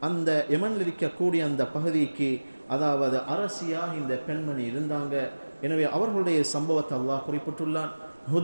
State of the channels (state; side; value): inverted; both; correlation -1.00